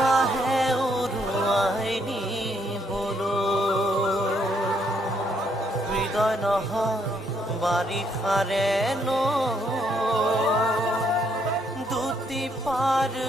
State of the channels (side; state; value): both; normal; correlation 0.72